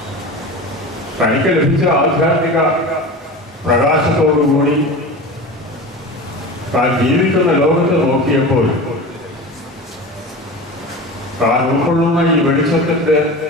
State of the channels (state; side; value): normal; both; correlation 0.31